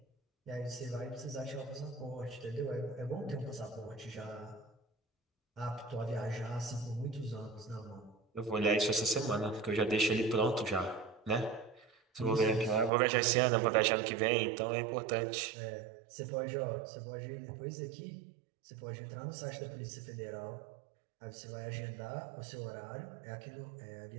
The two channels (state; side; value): drops out; left; at 12.9 s